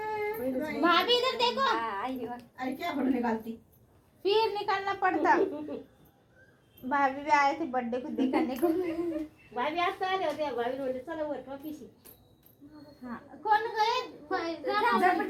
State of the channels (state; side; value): identical; both; correlation 1.00